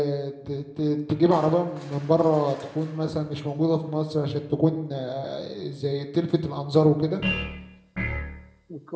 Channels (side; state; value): both; identical; correlation 1.00